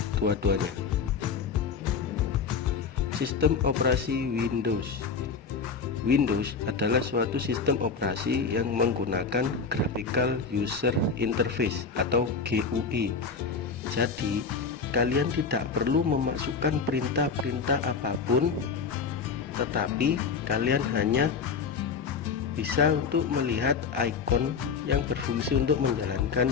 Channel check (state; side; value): quieter; right; 5.3 dB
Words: dua-duanya. Sistem operasi Windows. Windows adalah suatu sistem operasi yang menggunakan Graphical User Interface atau GUI. Jadi, kalian tidak perlu memasukkan perintah-perintah apapun, tetapi kalian hanya bisa untuk melihat ikon yang berfungsi untuk menjalankan